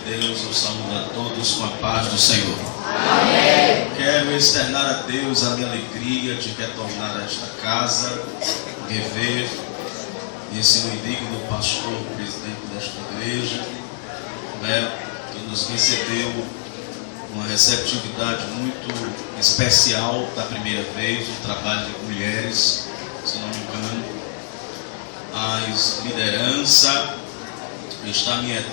eu saúdo a todos com a paz do Senhor. Amém. Quero externar a Deus a minha alegria de retornar a esta casa, rever esse meu indigno pastor, presidente desta igreja, que nos recebeu uma receptividade muito especial da primeira vez, o trabalho de mulheres, se não me engano. As lideranças, está minha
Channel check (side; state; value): right; silent; digital silence